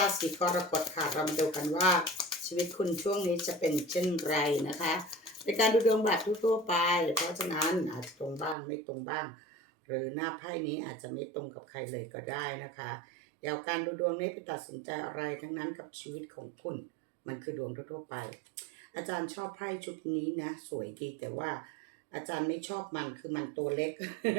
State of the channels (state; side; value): drops out; left; at 8.6 s